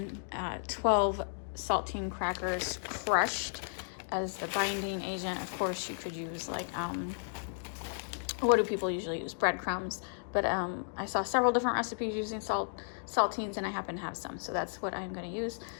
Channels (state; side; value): silent; right; digital silence